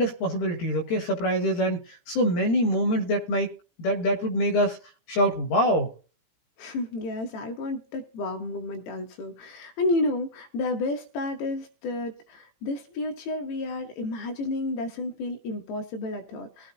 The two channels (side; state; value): right; late; 18 ms